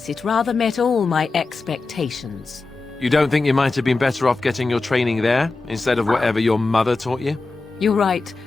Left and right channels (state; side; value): quieter; right; 3.6 dB